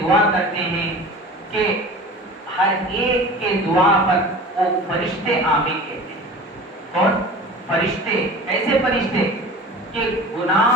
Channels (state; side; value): normal; both; correlation 0.38